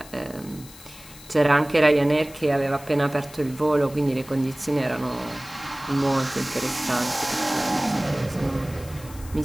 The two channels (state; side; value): noise; left; hiss, 19 dB below the sound